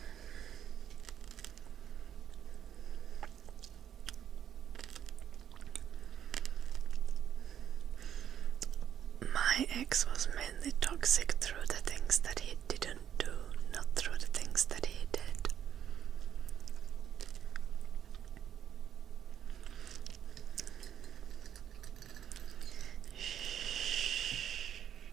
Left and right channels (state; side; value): quieter; left; 9.7 dB